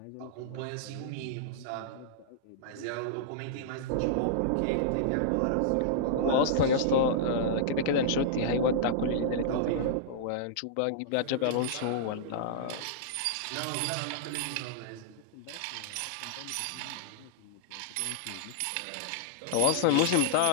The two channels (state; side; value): different; both; correlation -0.02